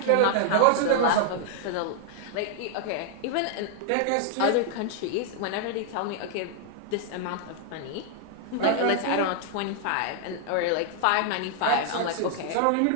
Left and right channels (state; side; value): different; both; correlation 0.00